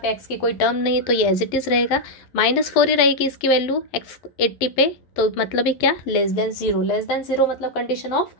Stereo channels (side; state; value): right; late; 11 ms